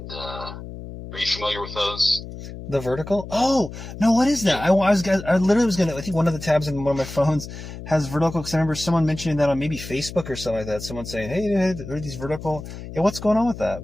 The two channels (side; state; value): left; noise; hum, 11 dB below the sound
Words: are you familiar with those? The vertical? Oh no, what is that? I literally was gonna. I think one of the tabs in one of my phones has vertical, because I remember someone mentioning that on maybe Facebook or something like that. Someone saying, "Hey, are these vertical?" Yeah, what's going on with